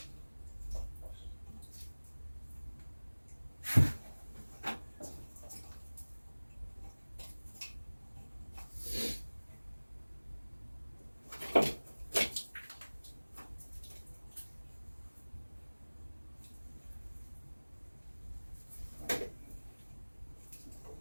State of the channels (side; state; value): both; inverted; correlation -1.00